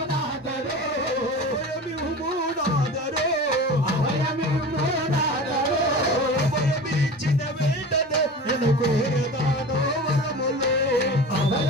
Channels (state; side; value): normal; both; correlation 0.34